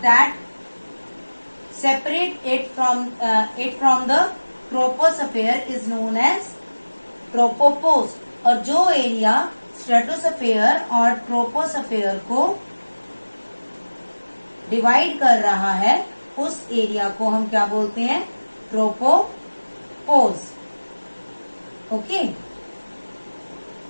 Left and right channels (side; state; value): both; inverted; correlation -1.00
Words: that separate it from the troposphere is known as tropopause. और जो एरिया स्ट्रेटोस्फेयर और ट्रोपोस्फेयर को डिवाइड कर रहा है उस एरिया को हम क्या बोलते हैं? Tropopause. Okay,